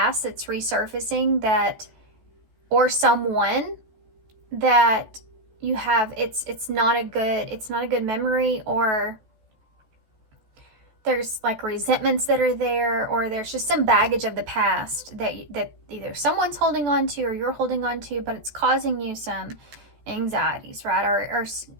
that's resurfacing, that, or someone that you have, it's not a good memory, or there's like resentments that are there, or there's just some baggage of the past that either someone's holding on to or you're holding on to, but it's causing you some anxieties, right? Or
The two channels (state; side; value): late; left; 14 ms